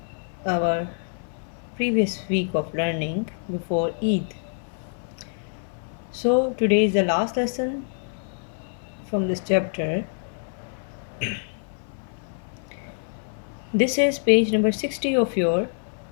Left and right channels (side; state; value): right; silent; 57 dB below the other